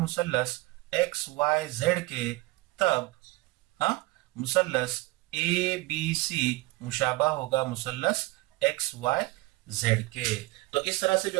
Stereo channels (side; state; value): left; quieter; 21.2 dB